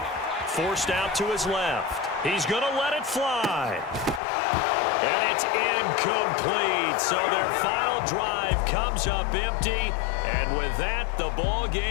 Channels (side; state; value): right; drops out; at 4.2 s